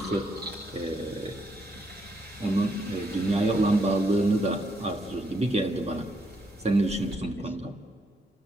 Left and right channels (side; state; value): both; normal; correlation 0.76